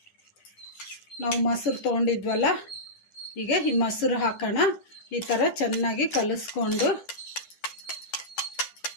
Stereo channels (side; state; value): right; late; 10 ms